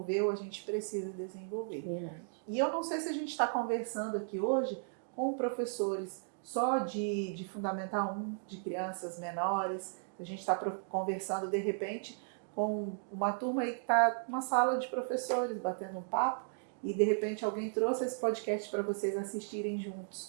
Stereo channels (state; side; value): silent; left; digital silence